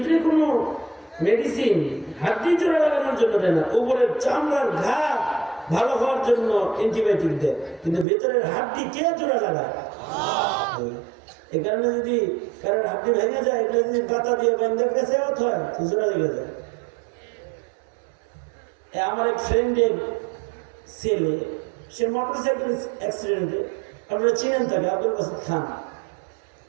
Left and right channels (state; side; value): drops out; left; at 8.1 s